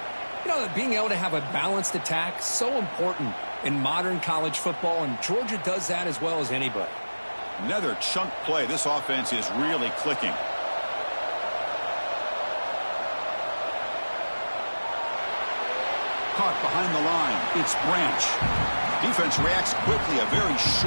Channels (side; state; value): both; inverted; correlation -1.00